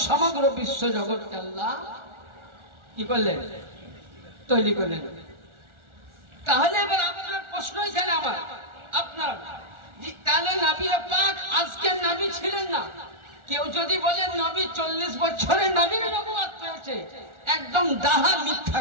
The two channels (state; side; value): late; left; 1.4 ms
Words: সমগ্র বিশ্ব জগৎকে আল্লাহ কি করলেন? তৈরি করলেন। তাহলে এবার আপনার প্রশ্ন এখানে আমার, আপনার, তাহলে নবী পাক আজকে নবী ছিলেন না? কেউ যদি বলে নবী 40 বছরে নবীর নবুয়ত পেয়েছে, একদম ডাহা মিথ্যা